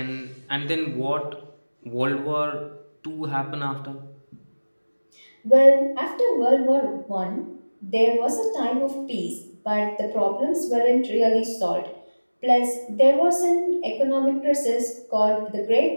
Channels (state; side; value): inverted; both; correlation -1.00